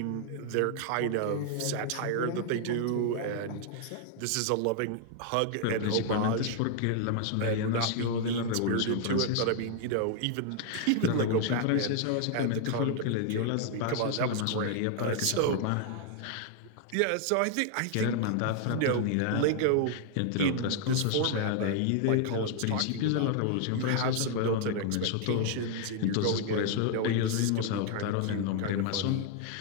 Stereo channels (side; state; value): both; different; correlation 0.00